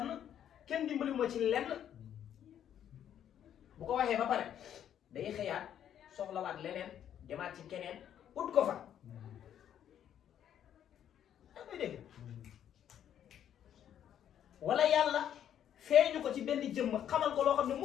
kenn dimbaliwuma ci lenn bu ko waxee ba pare day xëyaat soxlawaat leneen demaat ci keneen ut ko fa yaa ngi dégg wala yàlla feeñu ko ci benn jëmm xamal ko loo xam ne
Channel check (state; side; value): quieter; right; 9.9 dB